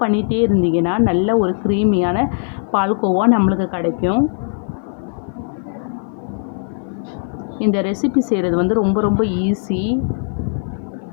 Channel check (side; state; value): right; silent; 61 dB below the other